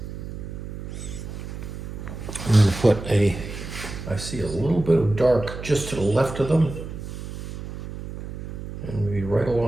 I'm going to put I see a little bit of dark just to the left of them. And maybe right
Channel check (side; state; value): right; noise; hum, 9 dB below the sound